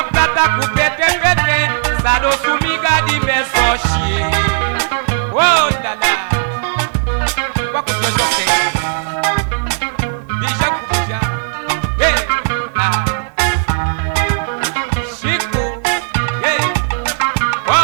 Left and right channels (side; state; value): left; silent; digital silence